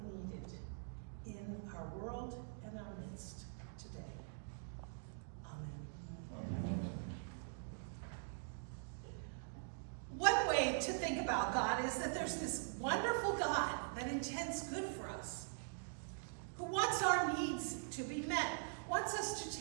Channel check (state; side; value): silent; left; digital silence